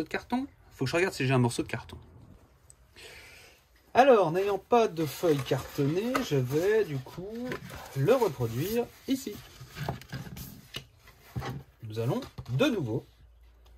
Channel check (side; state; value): both; identical; correlation 1.00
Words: de carton? Faut que je regarde si j'ai un morceau de carton. Alors, n'ayant pas de feuille cartonnée, je vais du coup le reproduire ici. Nous allons de nouveau